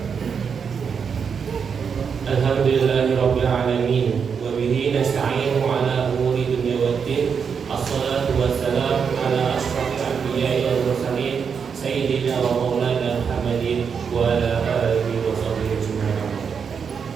Alhamdulillahirabbil alamin wa bihi nasta'inu ala umuri dunya waddin. Assalatu wassalamu ala asyrafil anbiya'i wal mursalin sayyidina wa maulana Muhammadin wa ala alihi wa sahbihi ajma'in.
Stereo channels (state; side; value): quieter; left; 6.4 dB